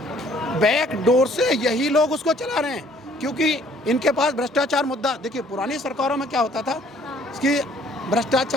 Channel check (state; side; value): normal; both; correlation 0.60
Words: बैक डोर से यही लोग उसको चला रहे हैं, क्योंकि इनके पास भ्रष्टाचार मुद्दा, देखिए पुरानी सरकारों में क्या होता था कि